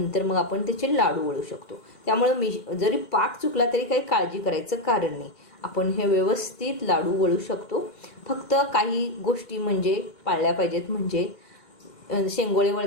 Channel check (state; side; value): late; right; 2.1 ms